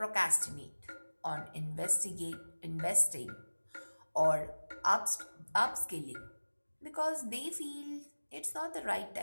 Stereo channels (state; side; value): inverted; both; correlation -1.00